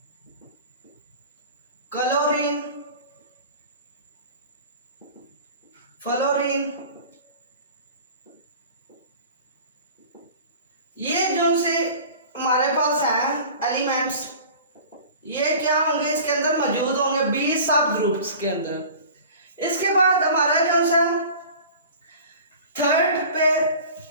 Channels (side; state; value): both; inverted; correlation -0.41